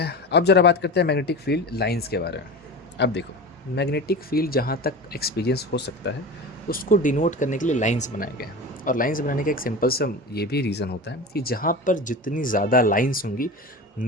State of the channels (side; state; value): both; normal; correlation 0.29